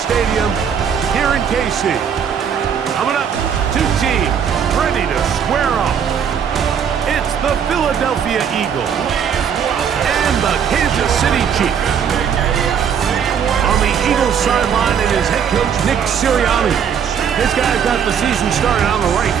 here in KC. Coming up, two teams ready to square off. It's the Philadelphia Eagles and the Kansas City Chiefs. On the Eagles sideline is head coach Nick Sirianni. This guy's got the season started on the right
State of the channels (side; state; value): left; quieter; 7.7 dB